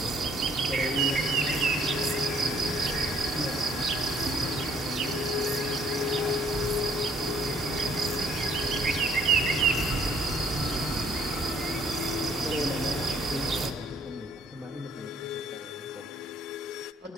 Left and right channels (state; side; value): normal; both; correlation 0.63